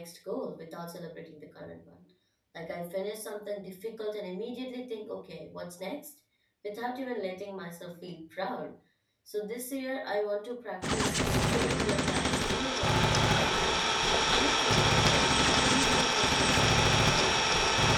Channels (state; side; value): identical; both; correlation 1.00